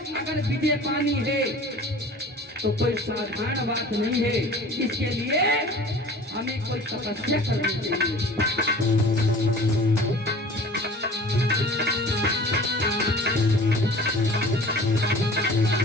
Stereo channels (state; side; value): normal; both; correlation 0.43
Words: अगर विजय पानी है तो कोई साधारण बात नहीं है। इसके लिए हमें कोई तपस्या करनी चाहिए।